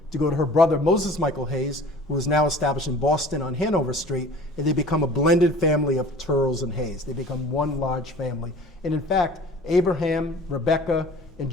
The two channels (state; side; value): normal; both; correlation 0.45